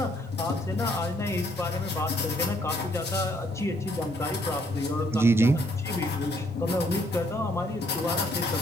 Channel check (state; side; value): normal; both; correlation 0.68